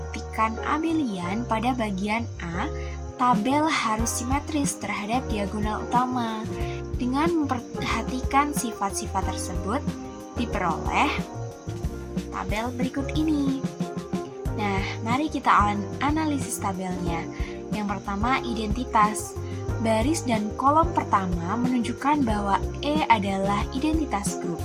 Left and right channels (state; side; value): identical; both; correlation 1.00